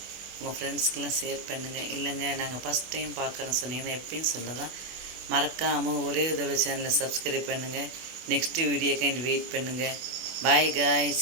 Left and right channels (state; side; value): late; left; 24 ms